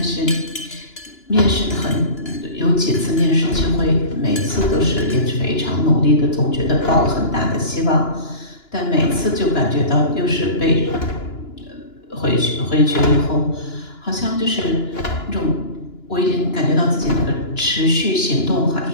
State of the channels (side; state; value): right; late; 2.9 ms